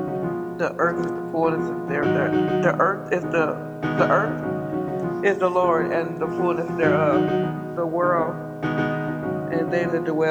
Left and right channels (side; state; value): both; identical; correlation 1.00